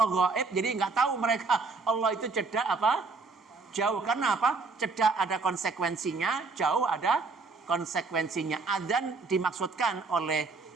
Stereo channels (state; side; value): quieter; left; 4.2 dB